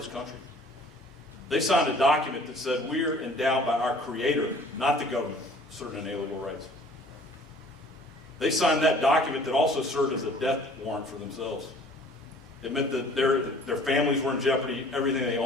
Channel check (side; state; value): both; normal; correlation 0.52